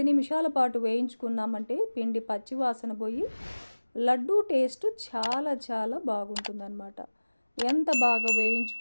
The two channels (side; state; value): both; inverted; correlation -1.00